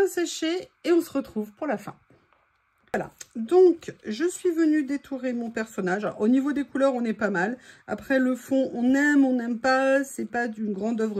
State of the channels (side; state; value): both; identical; correlation 1.00